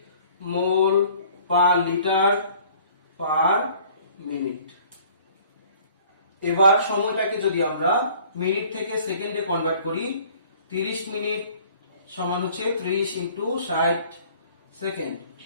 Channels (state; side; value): inverted; both; correlation -0.53